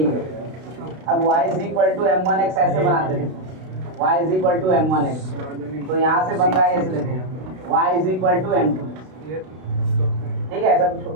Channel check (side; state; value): left; late; 32 ms